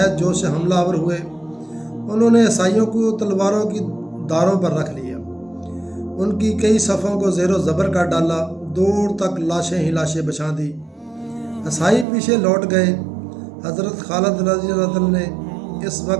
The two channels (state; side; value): drops out; left; at 12.1 s